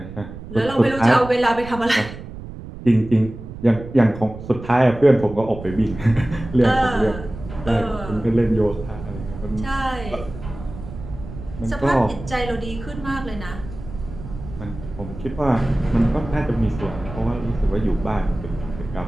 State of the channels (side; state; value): right; noise; rumble, 12 dB below the sound